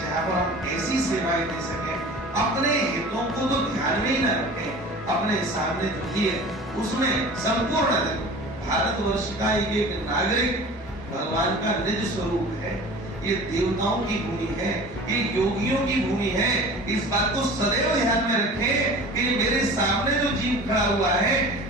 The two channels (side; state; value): both; normal; correlation 0.40